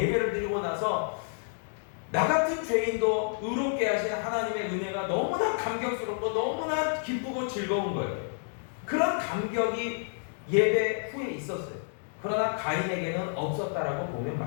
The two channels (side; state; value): right; silent; digital silence